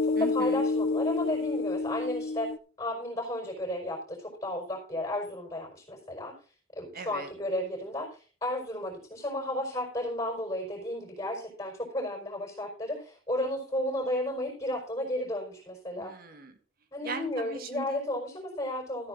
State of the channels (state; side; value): normal; both; correlation 0.39